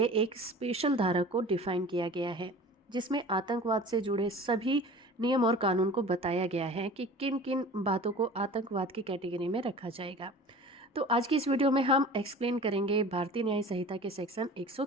एक स्पेशल धारा को डिफाइन किया गया है, जिसमें आतंकवाद से जुड़े सभी नियम और कानून को बताया गया है कि किन किन बातों को आतंकवाद की कैटेगरी में रखा जाएगा। तो आज की इस वीडियो में हम एक्सप्लेन करेंगे भारतीय न्याय संहिता के सेक्शन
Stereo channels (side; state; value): both; normal; correlation 0.40